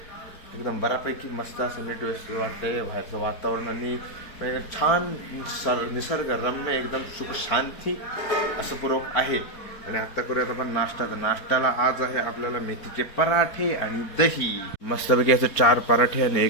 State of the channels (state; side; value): late; right; 4.5 ms